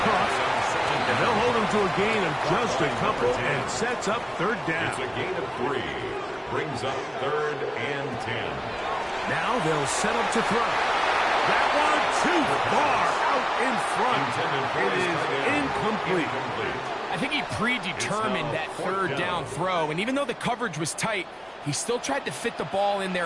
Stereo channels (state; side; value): identical; both; correlation 1.00